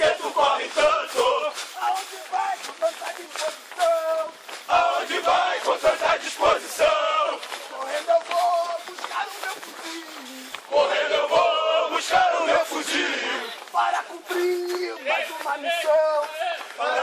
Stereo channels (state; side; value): identical; both; correlation 1.00